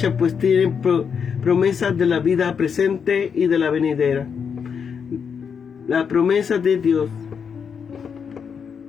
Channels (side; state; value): right; quieter; 6.7 dB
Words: pues tiene promesas de la vida presente y de la venidera. La promesa de Dios